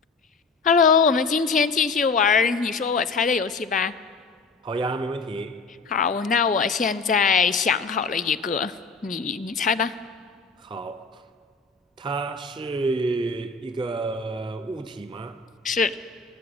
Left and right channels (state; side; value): quieter; right; 4.4 dB